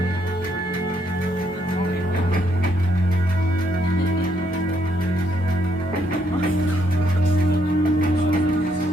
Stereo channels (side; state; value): both; normal; correlation 0.73